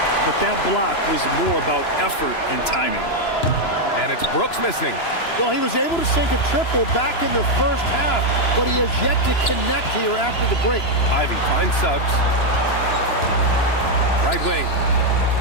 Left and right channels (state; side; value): late; right; 2.9 ms